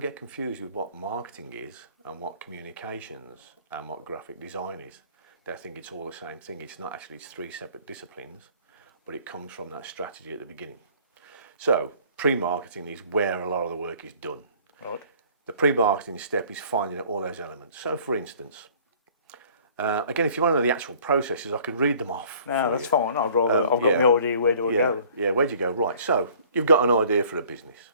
confused with what marketing is and what communications and what graphic design is. They think it's all the same thing. It's not actually, it's 3 separate disciplines, but it comes from that strategy at the beginning. So pre-marketing is where a lot of the work is done. Right. The pre-marketing step is finding out all those elements. So for instance, again, if you want to know the actual processes, I could read them off. No, that's fine. I've got my idea, where do I go? Yeah, where do you go? Right, so you've got an idea for a business.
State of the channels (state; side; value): inverted; both; correlation -0.53